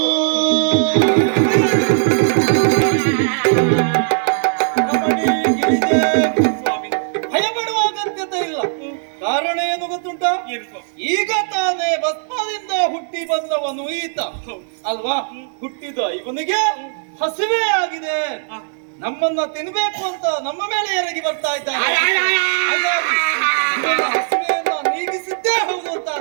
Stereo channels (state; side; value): silent; left; digital silence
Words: ಭಯಪಡುವ ಅಗತ್ಯತೆ ಇಲ್ಲ. ಕಾರಣ ಏನು ಗೊತ್ತುಂಟ? ಈಗ ತಾನೇ ಭಸ್ಮದಿಂದ ಹುಟ್ಟಿ ಬಂದವನು ಈತ ಅಲ್ವಾ? ಹುಟ್ಟಿದ ಇವನಿಗೆ ಹಸಿವೆ ಆಗಿದೆ, ನಮ್ಮನ್ನ ತಿನ್ಬೇಕು ಅಂತ ನಮ್ಮ ಮೇಲೆ ಎರಗಿ ಬರ್ತಾ ಇದ್ದಾನೆ. ಹಾಗಾಗಿ ಇವನ ಹಸಿವೆಯನ್ನ ನೀಗಿಸಿದ್ದೇ ಹೌದು